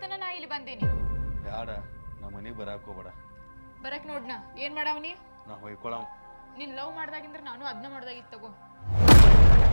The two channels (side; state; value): both; inverted; correlation -1.00